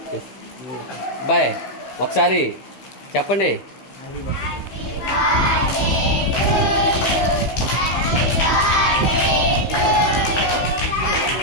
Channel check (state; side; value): late; right; 15 ms